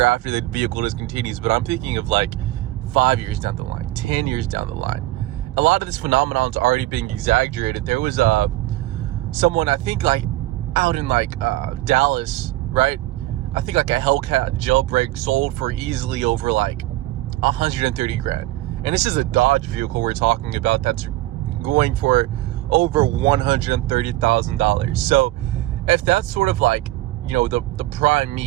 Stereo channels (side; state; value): left; quieter; 17.0 dB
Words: after the vehicle discontinues. But I'm thinking of 5 years down the line, 10 years down the line. A lot of this phenomenon is already being exaggerated. There was someone, I think out in Dallas, right? I think a Hellcat jailbreak sold for easily over 130 grand. And this is a Dodge vehicle we're talking about that's going for over $130,000. So if that's sort of the prime